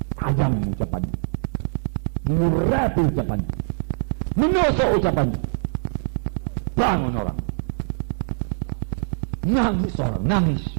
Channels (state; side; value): silent; left; digital silence